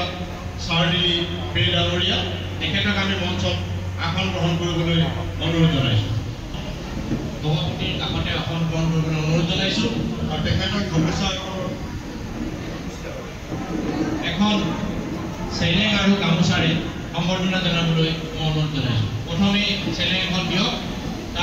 চাৰ্ডিলি পে ডাঙৰীয়া, তেখেতক আমি মঞ্চত আসন গ্ৰহণ কৰিবলৈ অনুৰোধ জনাইছোঁ। সভাপতিৰ কাষতে আসন গ্ৰহণ কৰিবলৈ অনুৰোধ জনাইছোঁ। আৰু তেখেতক গামোচা এখন চেলেং আৰু গামোচাৰে সম্বৰ্ধনা জনাবলৈ মই অনুৰোধ জনাইছোঁ। প্ৰথমে চেলেং এখন দিয়ক,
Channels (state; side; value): identical; both; correlation 1.00